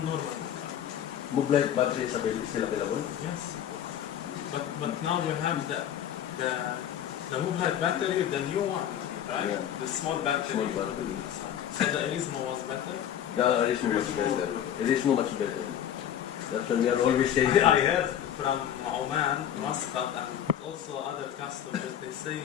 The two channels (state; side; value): quieter; right; 10.1 dB